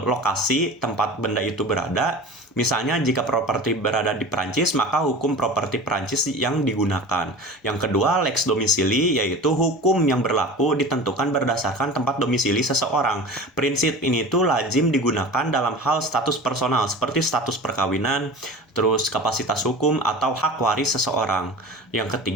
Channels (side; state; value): both; normal; correlation 0.35